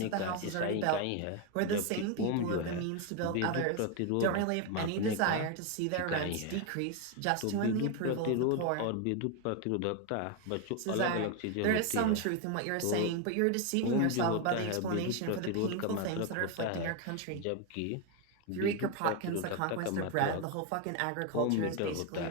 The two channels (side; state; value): both; different; correlation 0.02